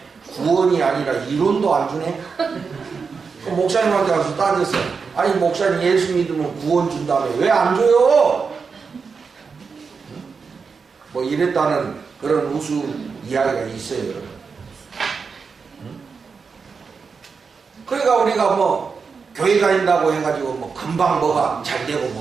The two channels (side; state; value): left; quieter; 5.3 dB